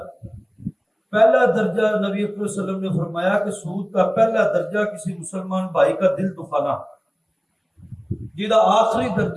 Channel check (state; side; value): identical; both; correlation 1.00